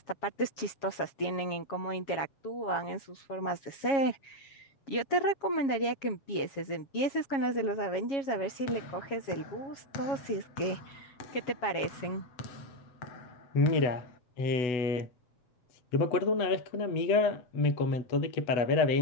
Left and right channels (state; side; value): late; right; 7.3 ms